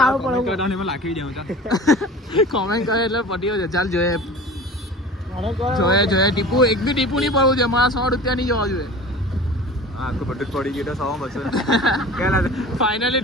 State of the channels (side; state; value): both; normal; correlation 0.39